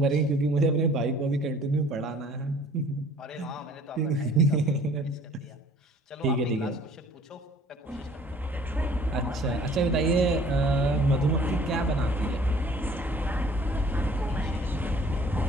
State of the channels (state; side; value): normal; both; correlation 0.53